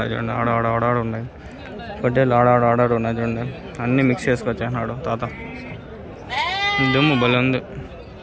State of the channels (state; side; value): identical; both; correlation 1.00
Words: చూడండి. ఆడ ఉన్నాయి. పొట్టేళ్ళు ఆడాడు ఉన్నాయి చూడండి. అన్నీ మిక్స్ చేసుకొచ్చేసినాడు తాత. దుమ్ము భలే ఉంది.